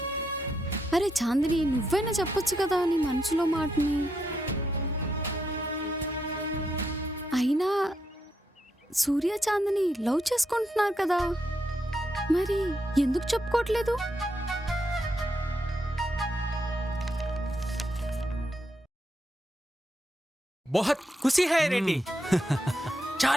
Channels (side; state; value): both; normal; correlation 0.80